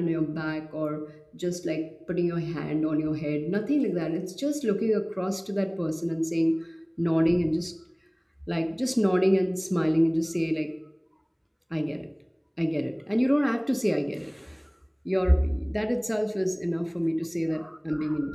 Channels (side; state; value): both; identical; correlation 1.00